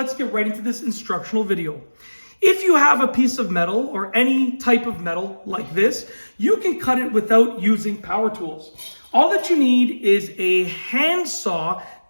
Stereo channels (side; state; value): both; inverted; correlation -1.00